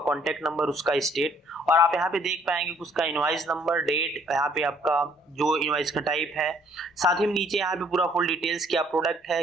नंबर, उसका स्टेट, और आप यहाँ पे देख पाएंगे कि उसका इनवॉइस नंबर, डेट, यहाँ पे आपका जो इनवॉइस का टाइप है, साथ ही नीचे यहाँ पे पूरा फुल डिटेल्स, क्या प्रोडक्ट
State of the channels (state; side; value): normal; both; correlation 0.62